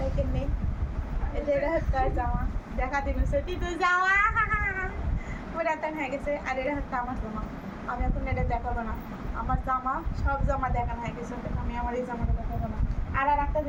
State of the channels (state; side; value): identical; both; correlation 1.00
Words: কেমনি। এরা হচ্ছে জামা, দেখা দিচ্ছে তুই যাওয়া পুরাতন হয়ে গেছে। আর এরা হচ্ছে আমার জামা, আমি এখন এটা দেখাবো না। আমার জামা সব জামা দেখানো হয়ে গেছে, আমি আমার এই জামাটা দেখাবো না। আর একটা